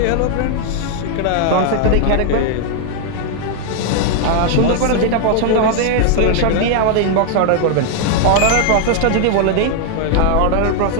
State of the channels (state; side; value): different; both; correlation 0.00